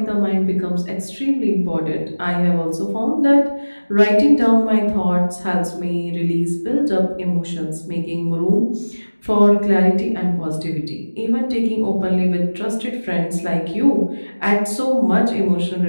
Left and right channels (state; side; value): inverted; both; correlation -1.00